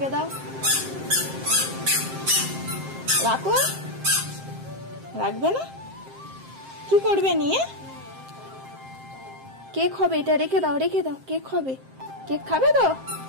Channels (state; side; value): late; left; 7.6 ms